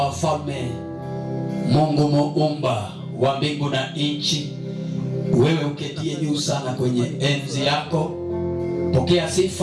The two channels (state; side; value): identical; both; correlation 1.00